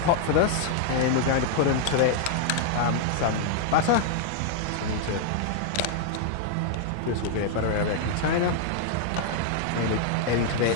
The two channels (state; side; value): different; both; correlation -0.01